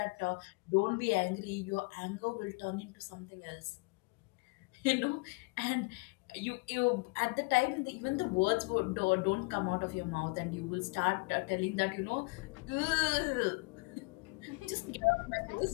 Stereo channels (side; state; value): right; quieter; 29.1 dB